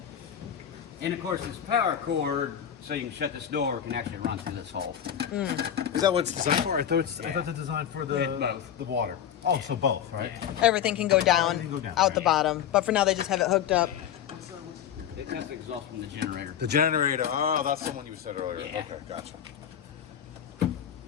And of course, this power cord, so you can shut this door, can actually run through this hole. Is that what it's designed for? I thought it's designed for both. the water. Oh, so both, right? Everything can go down, Everything can go down, out the right. bottom. But for now, they just have it hooked up. That's the exhaust from the generator. The generator. Oh, that's the one you said earlier. Yeah. Okay, gotcha.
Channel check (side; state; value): right; quieter; 9.4 dB